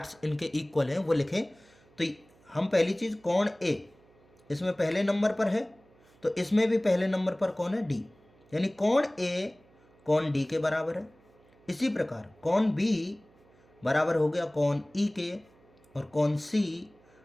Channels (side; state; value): right; noise; hum, 30 dB below the sound